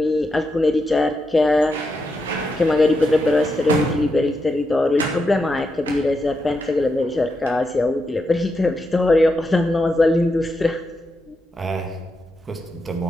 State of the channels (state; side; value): normal; both; correlation 0.85